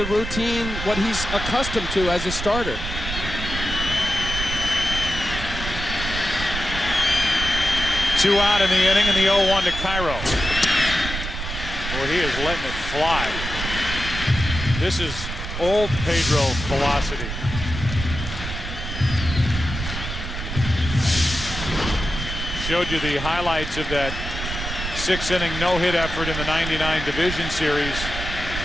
routine what he's accustomed to as a starter? Two out in the inning, and the 0-1 to Cairo. Well, he is letting it fly. This is old Pedro velocity. Showed you the highlights of that 6-inning no-hit effort in the '99 Division Series.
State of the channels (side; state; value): right; noise; rumble, 6 dB below the sound